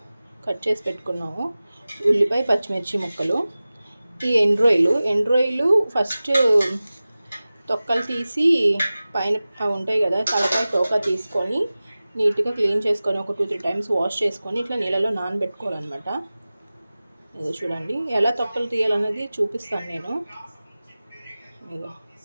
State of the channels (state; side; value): inverted; both; correlation -0.97